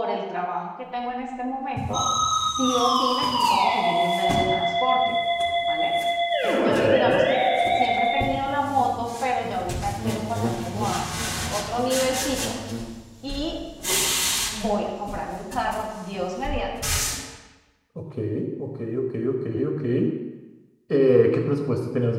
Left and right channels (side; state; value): both; identical; correlation 1.00